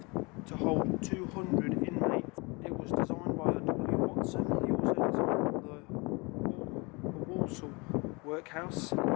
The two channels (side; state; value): right; quieter; 27.7 dB